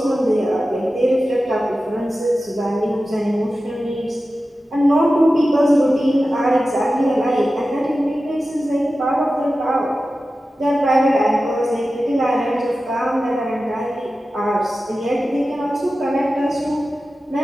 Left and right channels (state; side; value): normal; both; correlation 0.94